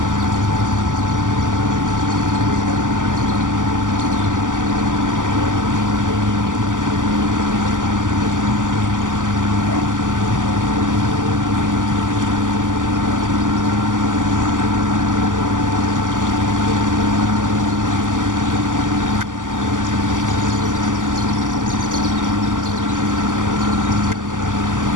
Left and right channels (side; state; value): left; late; 0.87 ms